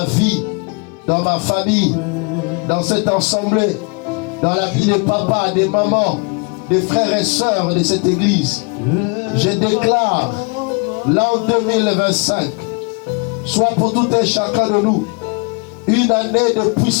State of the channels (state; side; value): quieter; right; 32.8 dB